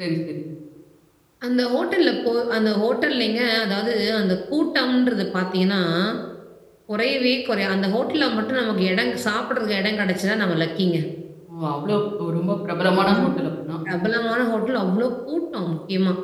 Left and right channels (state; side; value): identical; both; correlation 1.00